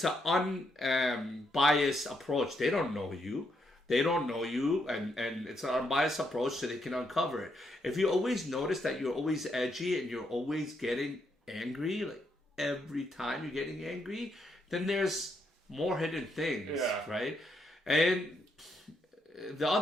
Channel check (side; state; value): both; normal; correlation 0.78